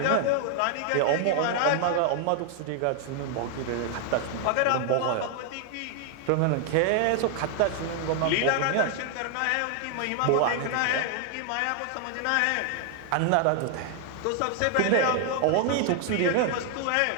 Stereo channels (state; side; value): different; both; correlation 0.00